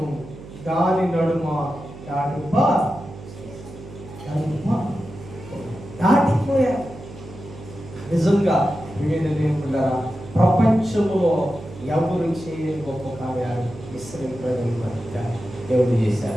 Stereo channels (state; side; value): noise; right; hum, 15 dB below the sound